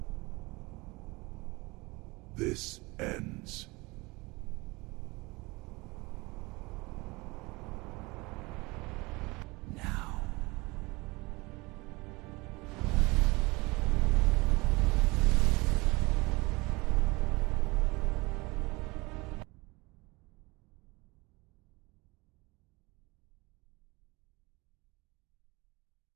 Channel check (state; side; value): quieter; left; 24.1 dB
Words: This ends. Now.